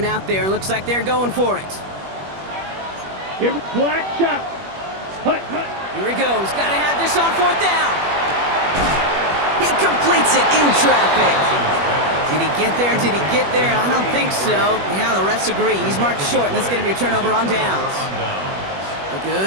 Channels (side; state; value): left; late; 21 ms